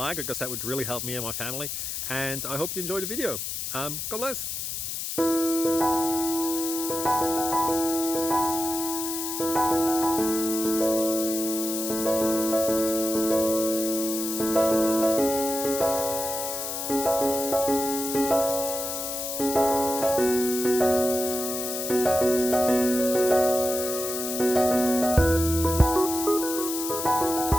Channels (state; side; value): noise; left; hiss, 4 dB below the sound